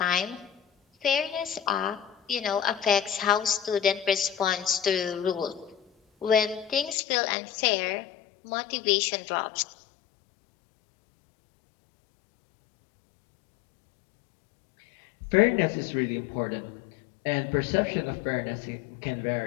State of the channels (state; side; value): drops out; right; at 7.0 s